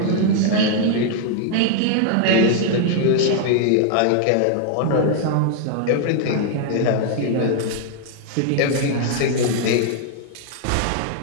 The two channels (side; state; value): both; different; correlation 0.00